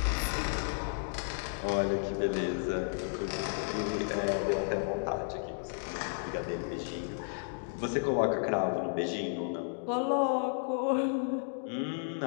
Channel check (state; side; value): silent; right; digital silence